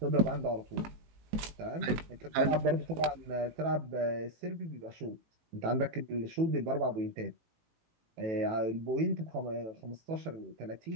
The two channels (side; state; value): left; late; 18 ms